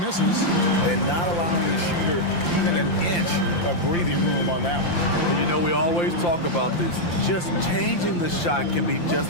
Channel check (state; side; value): late; right; 5.8 ms